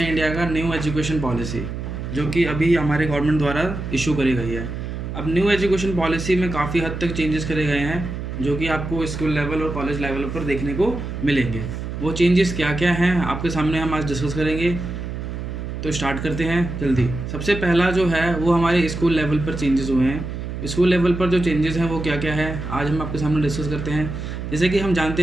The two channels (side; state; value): right; noise; hum, 6 dB below the sound